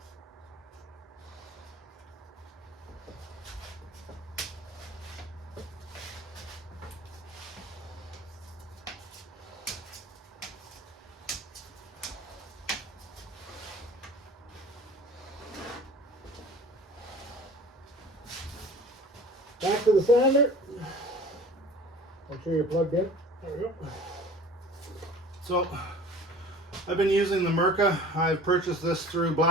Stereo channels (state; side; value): normal; both; correlation 0.44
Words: Back to the sander. Make sure you're plugged in. There we go. So I've been using the Mirka. I've purchased this through